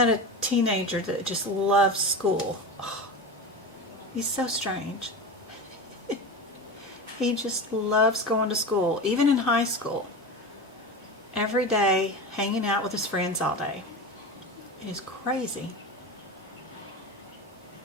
a teenager that just loves school. Oh, he's so strange. He just loves going to school, even in high school. Every day, hanging out with his friends all day. It is crazy.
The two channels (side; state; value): both; normal; correlation 0.25